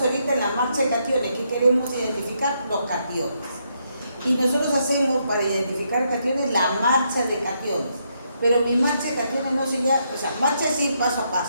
ahorita en la marcha de cationes, ¿qué queremos identificar? Los cationes. Y nosotros hacemos para identificar cationes la marcha de cationes. Pero mi marcha de cationes no se llama, o sea, marcha es ir paso a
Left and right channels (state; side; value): inverted; both; correlation -0.77